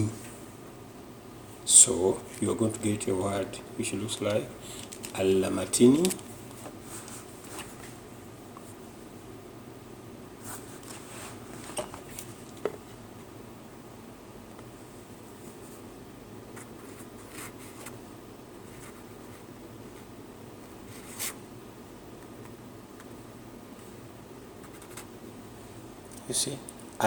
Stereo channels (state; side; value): identical; both; correlation 1.00